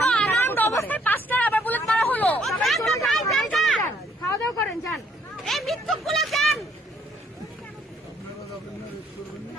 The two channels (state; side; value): normal; both; correlation 0.66